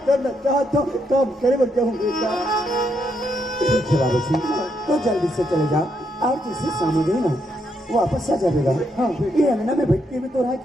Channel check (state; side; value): normal; both; correlation 0.77